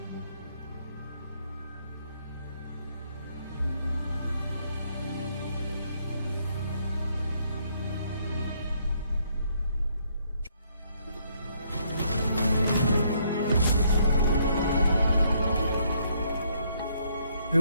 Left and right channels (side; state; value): both; inverted; correlation -0.70